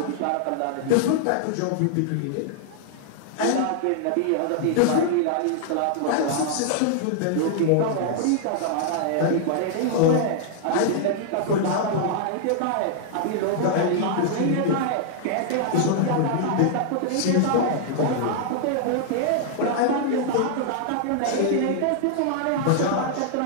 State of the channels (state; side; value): different; both; correlation -0.01